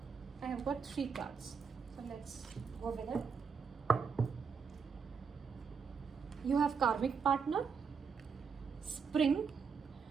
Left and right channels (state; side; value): quieter; left; 5.9 dB